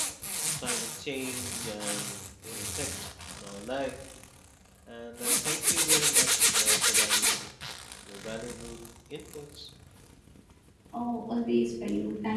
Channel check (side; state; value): both; identical; correlation 1.00